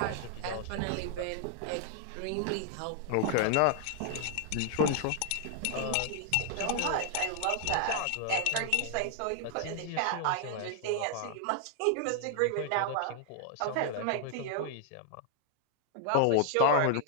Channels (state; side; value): different; both; correlation 0.00